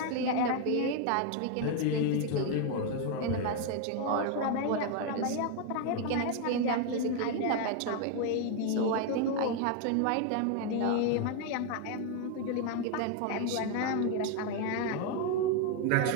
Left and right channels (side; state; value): both; different; correlation 0.01